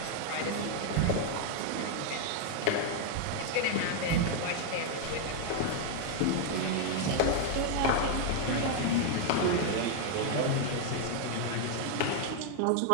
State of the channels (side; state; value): both; different; correlation 0.00